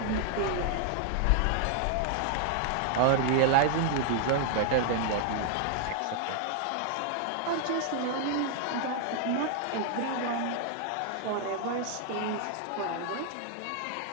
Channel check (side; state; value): both; different; correlation 0.00